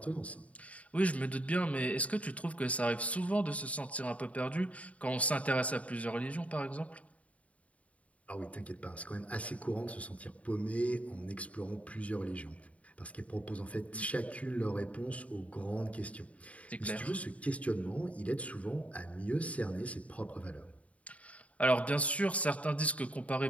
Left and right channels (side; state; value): right; late; 0.067 ms